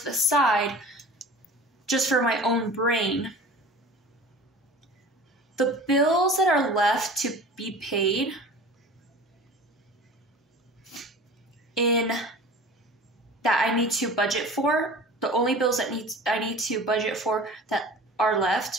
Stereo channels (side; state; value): both; normal; correlation 0.40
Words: the side just for my own brain. The bills that are left to be paid in that I need to budget for, the only bills that I need to budget for that are